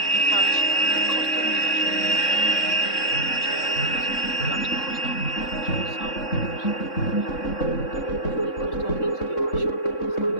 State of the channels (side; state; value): right; late; 3.6 ms